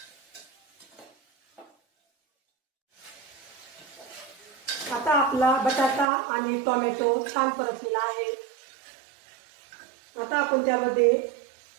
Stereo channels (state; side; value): drops out; left; at 6.1 s